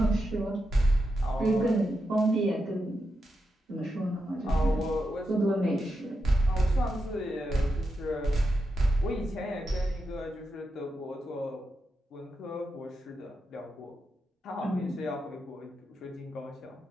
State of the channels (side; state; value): both; normal; correlation 0.87